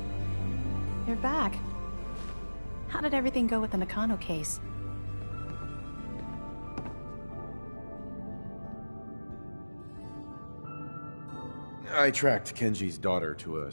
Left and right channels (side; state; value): both; inverted; correlation -1.00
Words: You're back. How did everything go with the Nakano case? I tracked Kenji's daughter to a